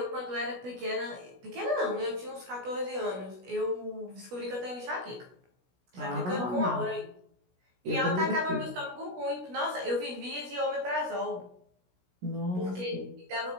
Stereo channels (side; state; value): left; late; 16 ms